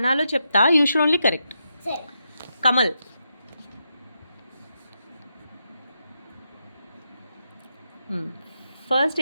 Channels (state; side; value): inverted; both; correlation -0.84